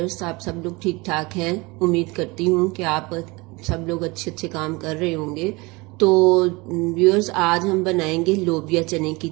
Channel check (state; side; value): quieter; left; 24.7 dB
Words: आप सब लोग ठीक ठाक हैं। उम्मीद करती हूँ कि आप सब लोग अच्छे अच्छे काम कर रहे होंगे। तो व्यूअर्स, आज हम बनाएंगे लोबिया चने की